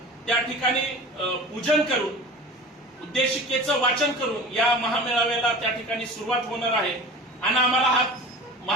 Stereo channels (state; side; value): normal; both; correlation 0.37